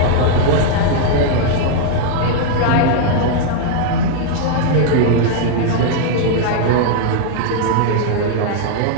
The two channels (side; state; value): both; different; correlation 0.00